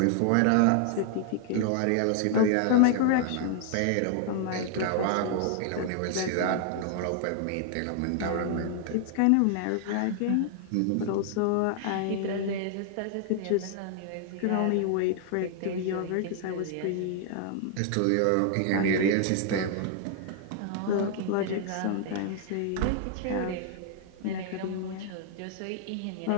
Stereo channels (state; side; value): different; both; correlation 0.00